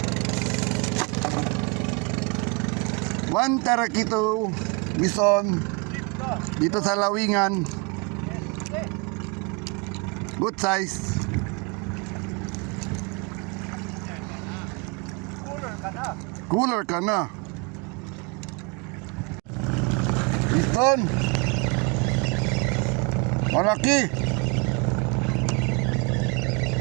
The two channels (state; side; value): quieter; left; 29.6 dB